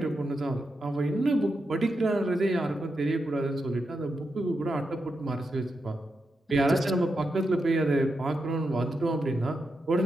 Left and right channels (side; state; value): both; normal; correlation 0.86